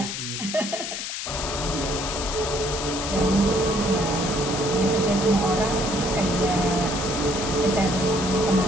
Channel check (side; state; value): left; noise; hiss, 5 dB below the sound